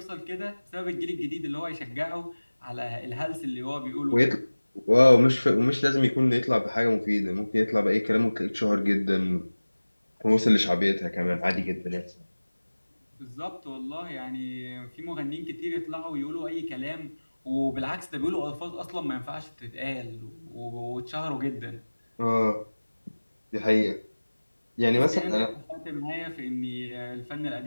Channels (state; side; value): inverted; both; correlation -1.00